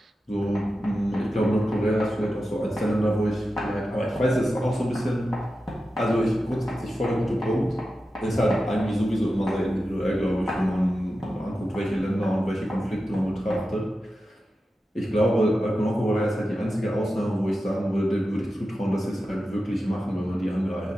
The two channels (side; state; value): both; normal; correlation 0.91